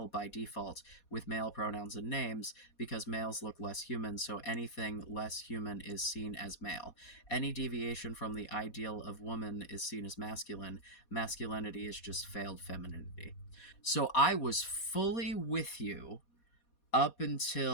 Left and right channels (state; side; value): late; right; 4.2 ms